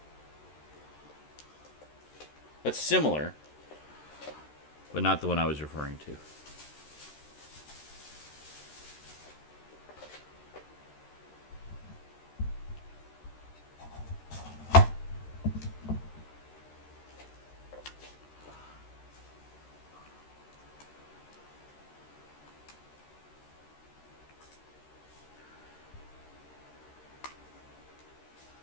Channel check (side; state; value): right; late; 13 ms